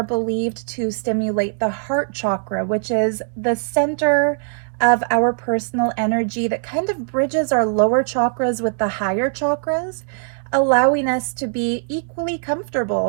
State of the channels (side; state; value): left; silent; digital silence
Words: believed to stimulate the heart chakra, which is the center of our personal energy that kind of bridges our lower chakras with the higher chakras, allowing us to be equally